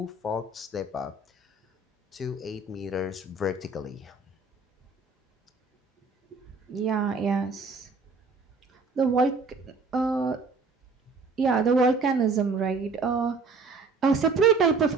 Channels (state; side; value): quieter; left; 4.0 dB